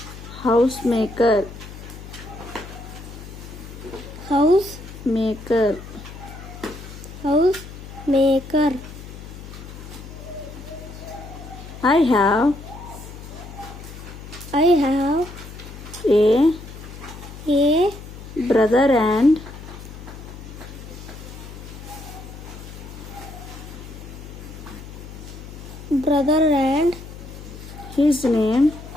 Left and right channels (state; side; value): noise; left; hum, 13 dB below the sound